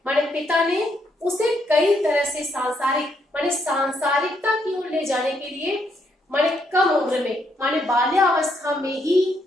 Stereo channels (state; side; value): normal; both; correlation 0.75